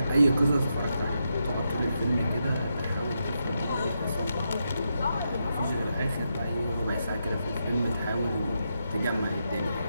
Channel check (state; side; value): inverted; both; correlation -0.84